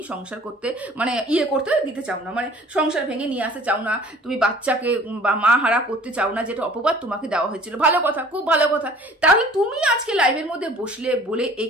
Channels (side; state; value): both; normal; correlation 0.50